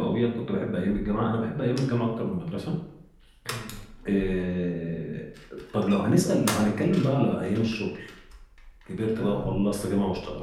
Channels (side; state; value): both; identical; correlation 1.00